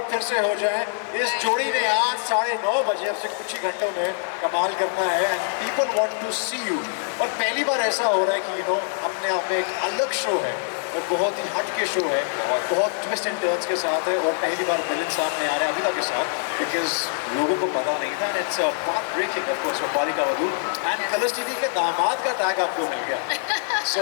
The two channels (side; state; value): right; silent; digital silence